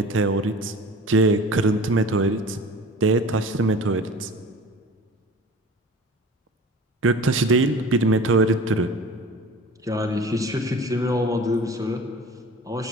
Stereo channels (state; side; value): normal; both; correlation 0.40